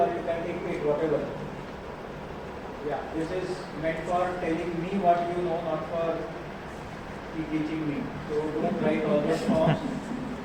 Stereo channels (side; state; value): both; identical; correlation 1.00